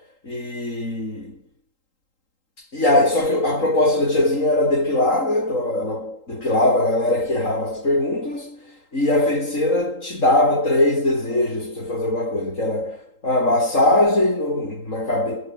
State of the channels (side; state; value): right; late; 3.8 ms